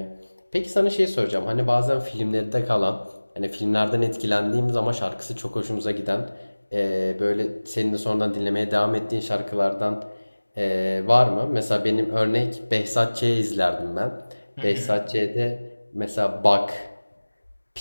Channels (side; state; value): both; inverted; correlation -1.00